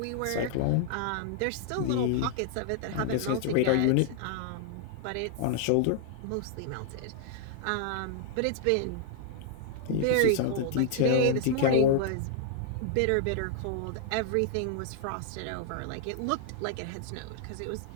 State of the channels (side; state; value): both; different; correlation -0.01